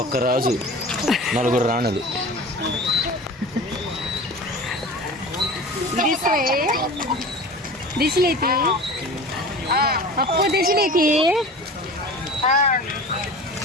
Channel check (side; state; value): both; normal; correlation 0.37